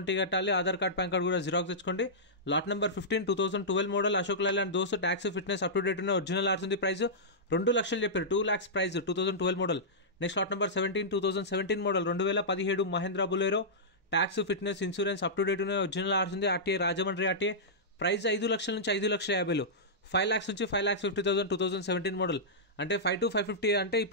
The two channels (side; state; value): both; normal; correlation -0.13